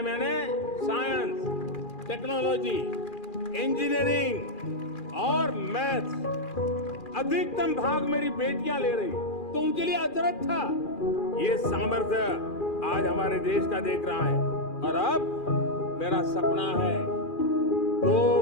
यानी साइंस, टेक्नोलॉजी, इंजीनियरिंग और मैथ्स अधिकतम भाग मेरी बेटियां ले रही, तो उनके लिए अजरत था। ये सामर्थ्य आज हमारे देश का देख रहा है। और अब मेरा सपना है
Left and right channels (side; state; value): right; late; 2.4 ms